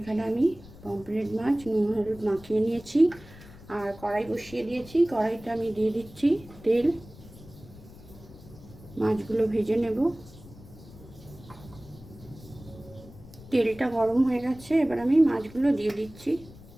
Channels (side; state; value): left; noise; rumble, 19 dB below the sound